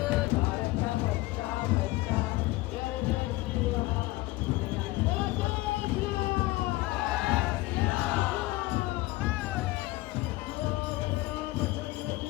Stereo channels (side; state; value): right; quieter; 19.6 dB